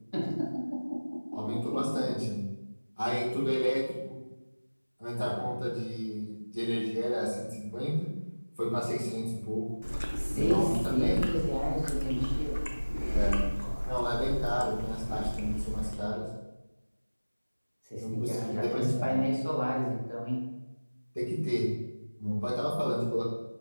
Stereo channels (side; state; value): both; inverted; correlation -1.00